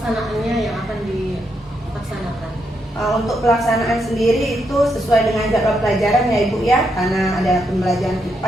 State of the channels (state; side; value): normal; both; correlation 0.80